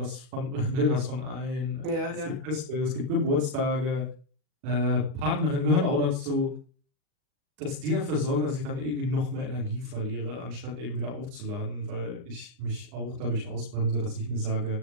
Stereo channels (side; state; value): left; late; 39 ms